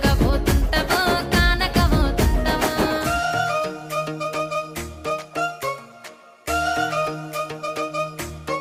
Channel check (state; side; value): identical; both; correlation 1.00